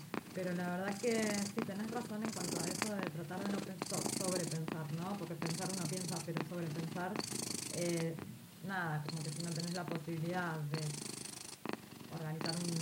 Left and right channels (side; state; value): both; identical; correlation 1.00